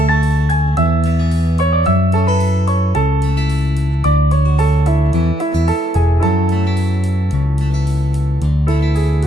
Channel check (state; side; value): normal; both; correlation 0.75